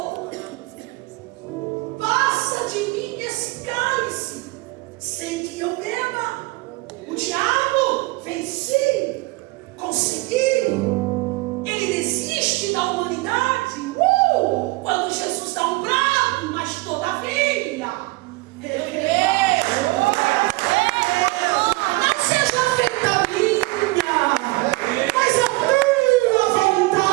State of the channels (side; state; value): left; quieter; 22.5 dB